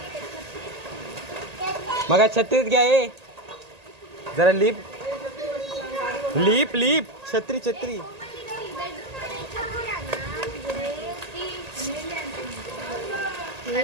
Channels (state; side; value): late; left; 1.8 ms